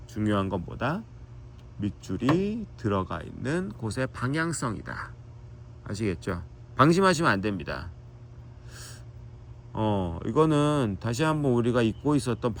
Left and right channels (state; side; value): identical; both; correlation 1.00